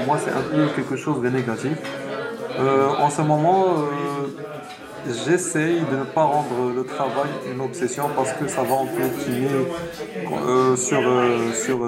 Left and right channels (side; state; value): both; identical; correlation 1.00